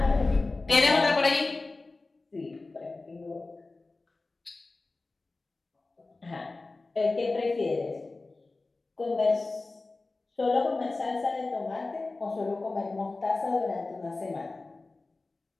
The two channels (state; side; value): quieter; right; 3.4 dB